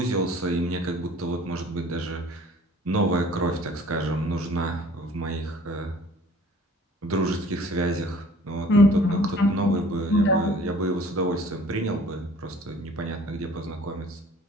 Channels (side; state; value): both; normal; correlation 0.51